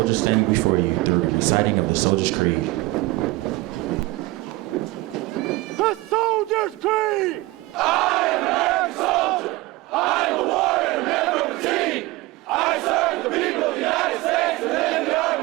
standing before you through the reciting of the Soldier's Creed. The Soldier's Creed! I am an American soldier. I am a warrior and a member of the team. I serve the people of the United States and live in the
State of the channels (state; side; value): quieter; left; 20.3 dB